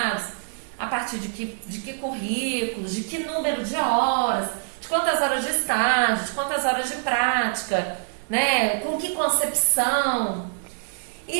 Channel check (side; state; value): left; silent; digital silence